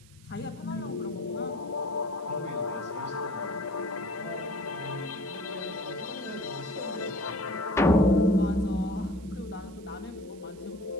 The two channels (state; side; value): noise; right; hiss, 26 dB below the sound